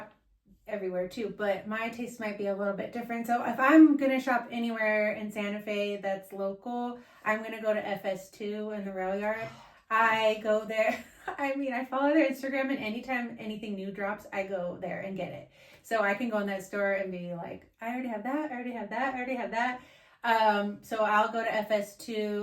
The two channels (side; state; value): both; identical; correlation 1.00